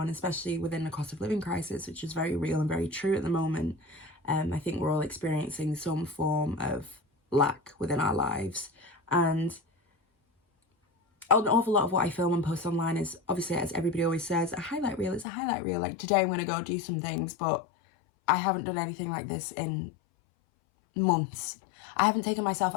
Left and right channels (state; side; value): drops out; right; at 15.2 s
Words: especially within the cost of living crisis, which is very real and very true at the moment. I think we're all experiencing some form of lack within our lives, and an awful lot of what I film and post online is, obviously, as everybody always says, a highlight reel. It's a highlight reel. Like, today I'm going to go do some things, but I haven't done anything like this in months. I haven't taken myself